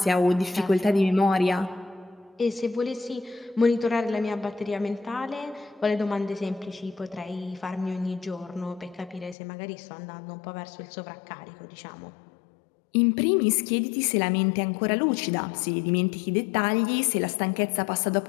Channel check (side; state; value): right; drops out; at 9.3 s